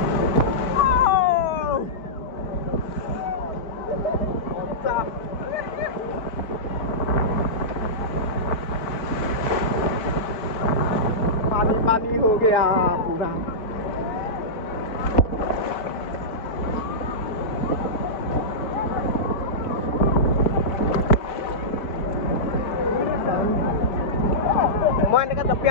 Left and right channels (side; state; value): right; late; 4.3 ms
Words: पानी पानी हो गया पूरा মই এনেকৈ